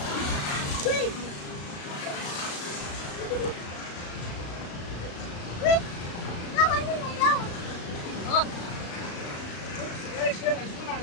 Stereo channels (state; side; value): late; right; 35 ms